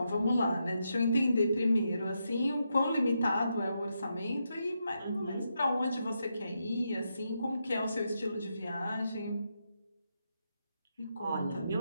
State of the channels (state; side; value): inverted; both; correlation -0.83